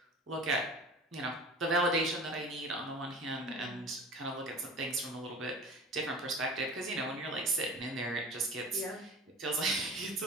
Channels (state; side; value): normal; both; correlation 0.39